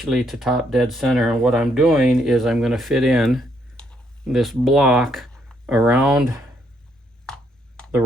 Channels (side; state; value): both; normal; correlation 0.72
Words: to top dead center, and what I'm doing is I'm going to fit in this block around the